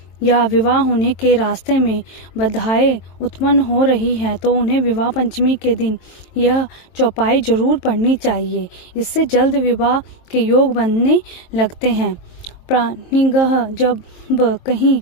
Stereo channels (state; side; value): late; right; 22 ms